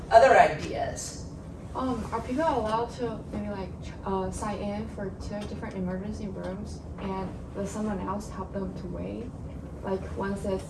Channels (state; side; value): identical; both; correlation 1.00